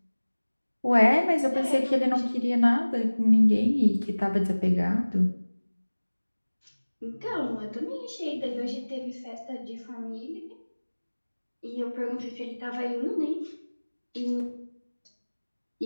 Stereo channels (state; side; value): inverted; both; correlation -1.00